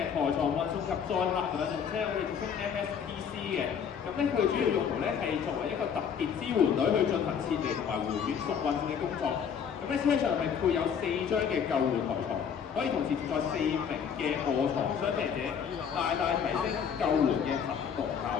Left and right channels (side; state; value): right; quieter; 7.4 dB